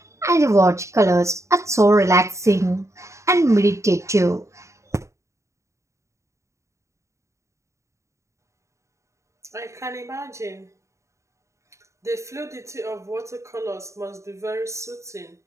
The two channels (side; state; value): left; late; 0.14 ms